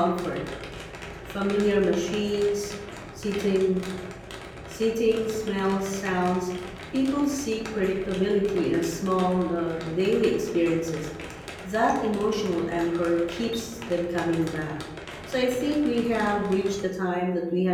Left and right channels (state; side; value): identical; both; correlation 1.00